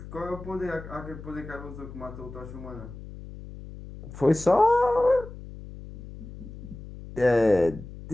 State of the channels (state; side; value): noise; left; hum, 14 dB below the sound